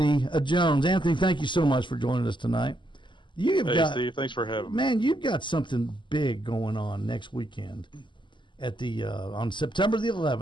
Jones. Anthony, thank you so much for joining us tonight. Steve, thanks for having me. Man, you've got something big going on next weekend at on September the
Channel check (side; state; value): right; late; 0.23 ms